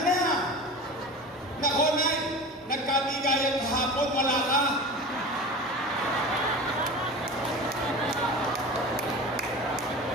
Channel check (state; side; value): normal; both; correlation 0.33